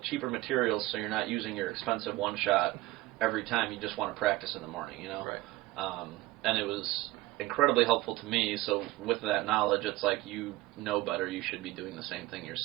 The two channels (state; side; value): quieter; left; 18.2 dB